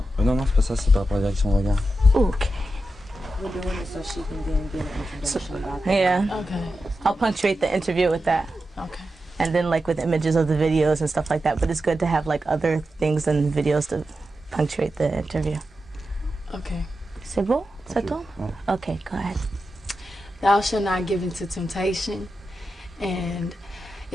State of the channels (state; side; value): normal; both; correlation 0.90